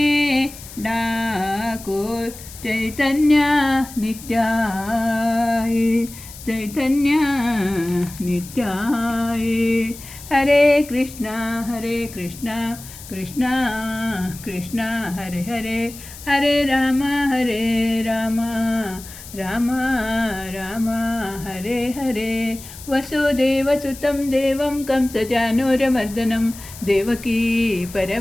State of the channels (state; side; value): noise; left; hiss, 16 dB below the sound